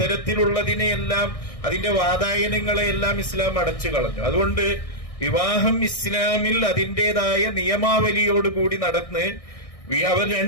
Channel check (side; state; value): right; late; 1.6 ms